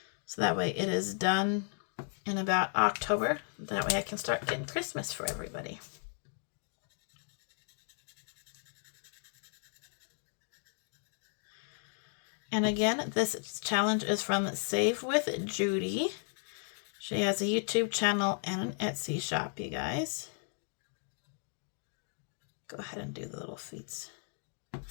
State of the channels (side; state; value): right; silent; 54 dB below the other